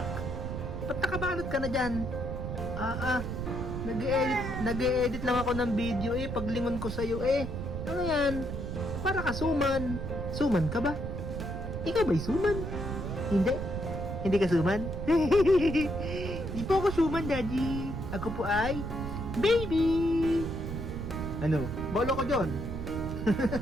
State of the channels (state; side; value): noise; right; rumble, 5 dB below the sound